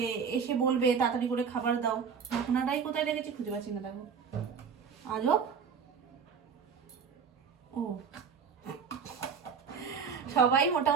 এসে বলবে তাড়াতাড়ি করে খাবার দাও। ঢাকনাটাই কোথায় রেখেছি খুঁজে পাচ্ছি না, দেখো আজব। ও, সবাই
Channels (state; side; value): quieter; left; 6.4 dB